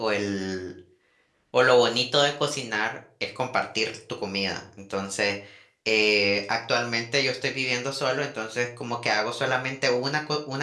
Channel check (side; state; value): both; identical; correlation 1.00